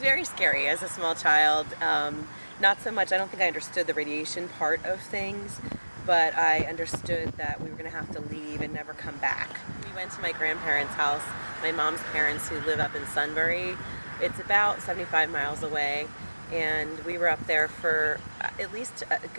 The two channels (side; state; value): both; inverted; correlation -1.00